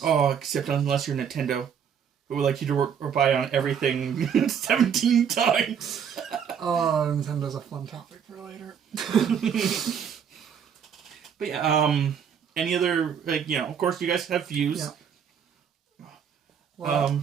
Oh, except unless you're Nintendo, who would like you to work or buy on everything 17 times. Oh, Nintendo's a fun topic for later. But yeah, any other, of course you guys have views. Yeah. Well,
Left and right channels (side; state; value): left; quieter; 7.7 dB